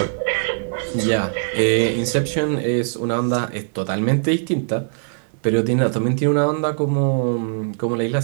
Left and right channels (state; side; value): silent; left; digital silence